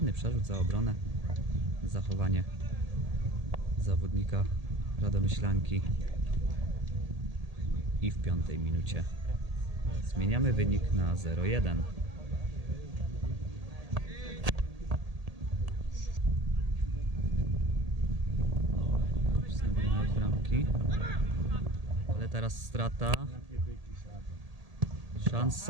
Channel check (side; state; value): left; late; 1.8 ms